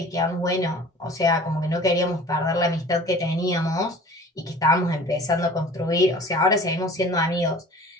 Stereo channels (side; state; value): both; normal; correlation 0.44